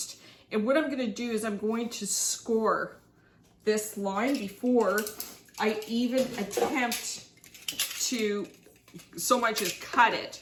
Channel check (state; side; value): identical; both; correlation 1.00